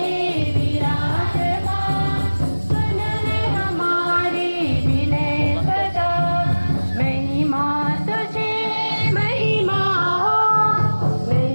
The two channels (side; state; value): both; inverted; correlation -1.00